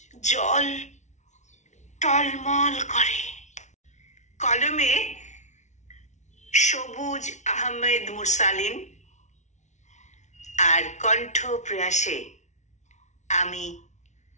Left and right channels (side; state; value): right; late; 0.34 ms